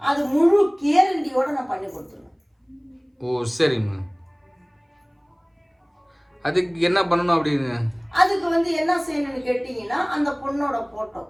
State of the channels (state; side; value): identical; both; correlation 1.00